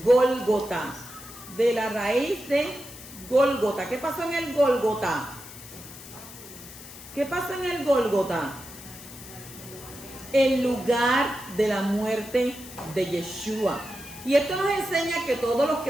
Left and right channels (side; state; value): left; noise; hiss, 16 dB below the sound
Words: Gólgota. De la raíz de Gólgota. ¿Qué pasó en el Gólgota? ¿Qué pasa en el Gólgota? El lugar de la muerte de Yeshua. Y esto nos enseña que todos los